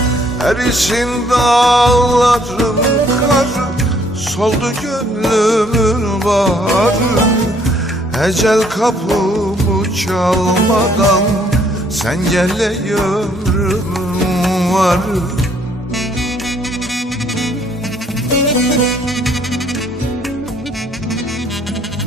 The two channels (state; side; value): normal; both; correlation 0.64